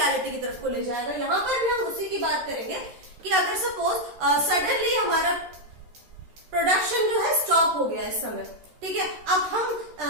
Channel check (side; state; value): left; late; 13 ms